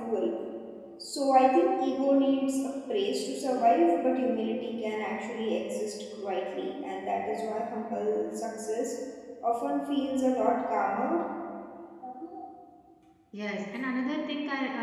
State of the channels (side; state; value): both; identical; correlation 1.00